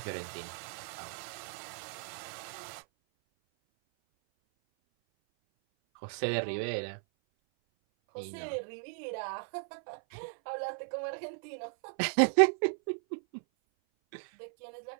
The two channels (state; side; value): silent; left; 54 dB below the other